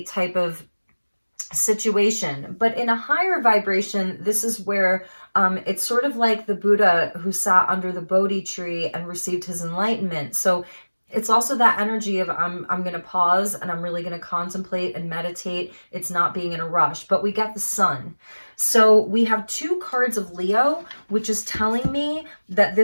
type of situation. But in a higher vibration, this is where it's sort of like the Buddha who sat under the Bodhi tree and received his enlightenment. So it's also that energy of I'm going to pause and I'm really going to contemplate and meditate. It's not being in a rush. But we get the Sun. So we have 2 cards of Leo, which is telling me that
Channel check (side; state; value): both; inverted; correlation -1.00